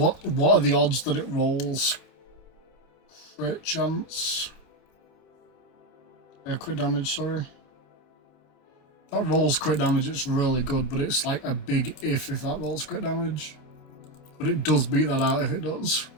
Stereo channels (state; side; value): late; right; 28 ms